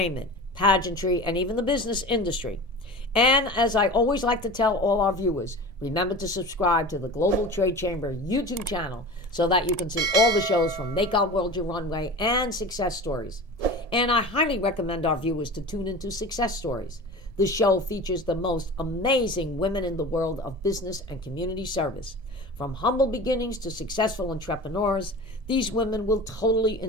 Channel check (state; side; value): late; left; 1.7 ms